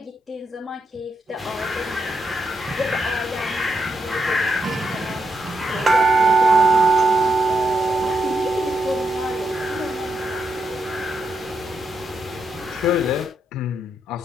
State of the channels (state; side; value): normal; both; correlation 0.82